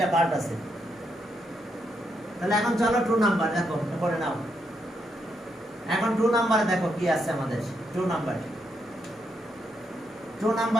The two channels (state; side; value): normal; both; correlation 0.79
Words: পার্ট আছে। তাহলে এখন চলো 2 নাম্বার দেখো করে নাও। এখন 2 নম্বরে দেখো কি আছে আমাদের। 2